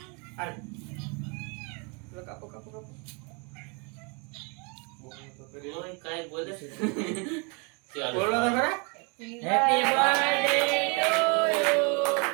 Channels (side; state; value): left; quieter; 33.1 dB